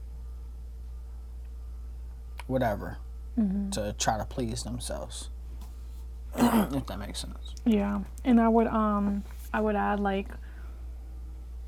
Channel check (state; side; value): identical; both; correlation 1.00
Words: whatever. To try to please themselves, if that makes sense. Yeah, and I would add, like,